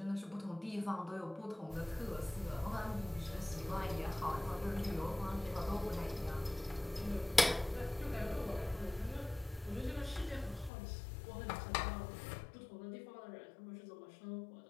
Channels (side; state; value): right; drops out; at 10.7 s